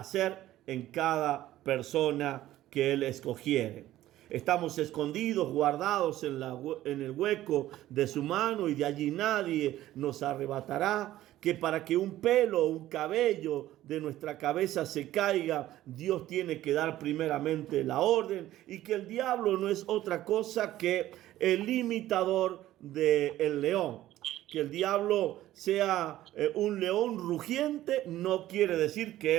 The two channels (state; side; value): quieter; left; 14.3 dB